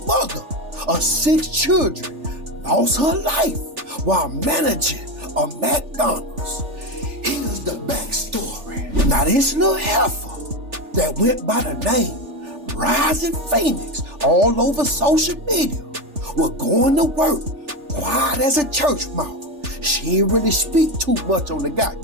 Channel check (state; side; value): late; left; 3.4 ms